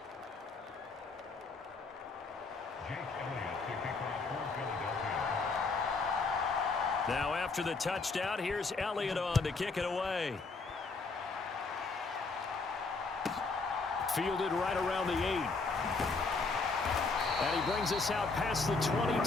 Now after the touchdown, here's Elliott on to kick it away. Fielded right around the 8. And he brings us out past the 20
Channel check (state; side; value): quieter; right; 4.1 dB